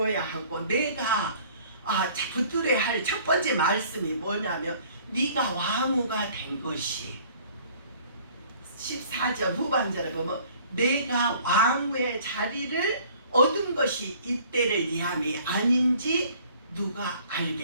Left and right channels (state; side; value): inverted; both; correlation -0.54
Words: 하고 내가 붙들어야 할 첫 번째 말씀이 뭐냐면 네가 왕후가 된 것이 14절 후반절에 보면 내가 왕후의 자리를 얻은 것이 이때를 위함이 아닌지 누가